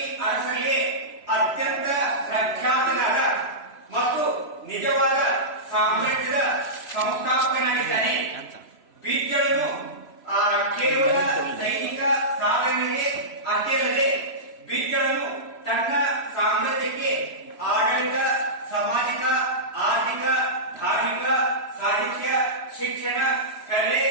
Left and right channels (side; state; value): right; late; 3.0 ms